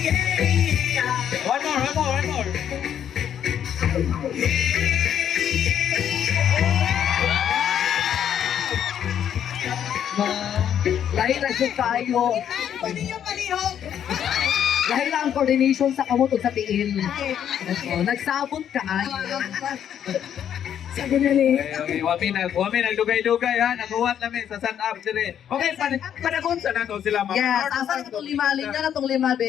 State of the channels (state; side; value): quieter; right; 9.5 dB